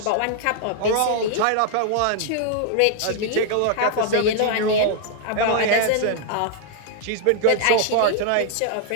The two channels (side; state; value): both; different; correlation 0.00